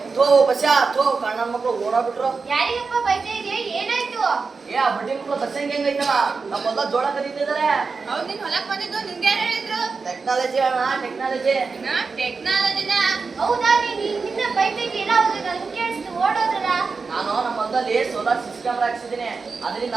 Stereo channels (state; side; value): quieter; left; 4.6 dB